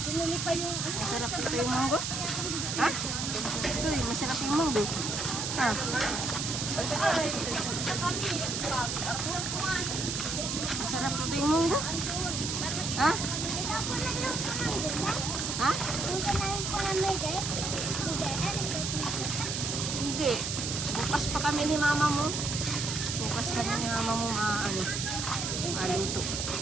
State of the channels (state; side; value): noise; right; hiss, 2 dB below the sound